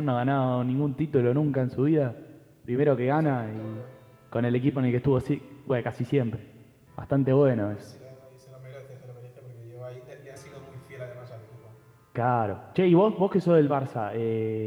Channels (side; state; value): both; identical; correlation 1.00